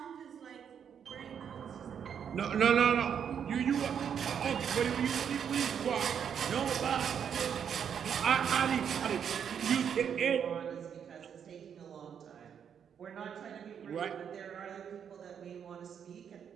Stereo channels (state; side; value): quieter; left; 8.0 dB